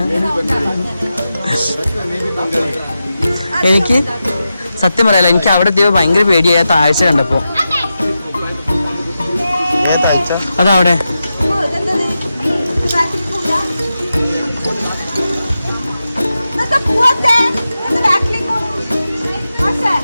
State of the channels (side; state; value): both; inverted; correlation -0.90